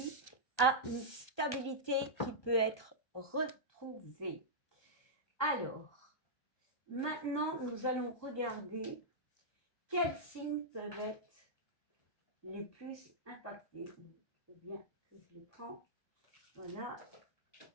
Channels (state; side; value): late; right; 1.2 ms